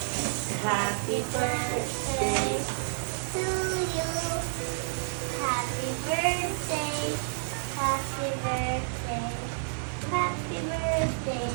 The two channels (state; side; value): silent; left; 58 dB below the other